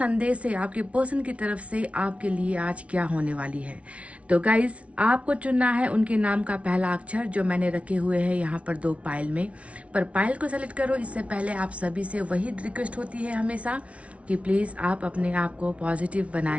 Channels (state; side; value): late; left; 0.063 ms